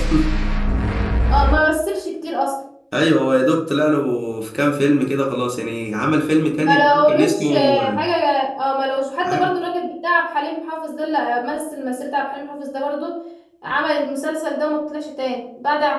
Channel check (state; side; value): identical; both; correlation 1.00